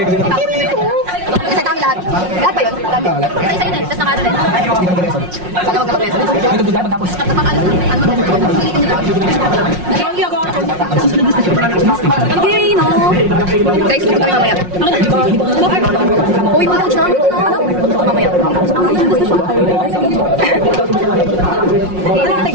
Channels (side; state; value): left; late; 5.5 ms